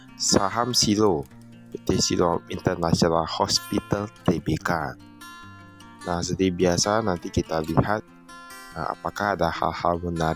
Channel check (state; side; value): identical; both; correlation 1.00